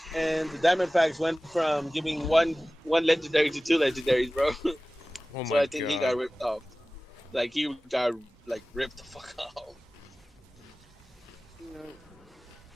And the diamond packs went from giving one legendary to two legendaries, bro. Oh So my I think he god. got ripped off. Like he got like ripped the fuck off. You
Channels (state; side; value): normal; both; correlation 0.97